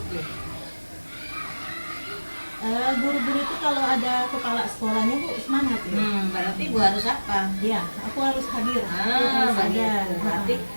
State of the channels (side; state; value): both; inverted; correlation -1.00